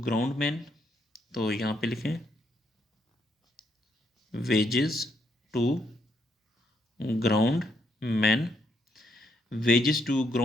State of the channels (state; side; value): normal; both; correlation 0.75